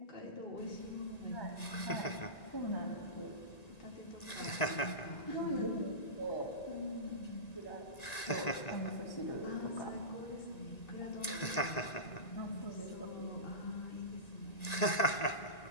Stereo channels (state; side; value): late; right; 1.9 ms